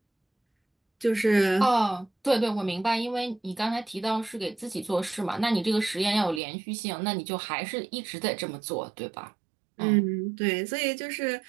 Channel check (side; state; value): left; drops out; at 6.4 s